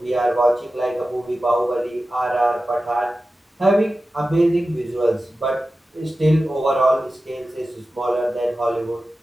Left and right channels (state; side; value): normal; both; correlation 0.94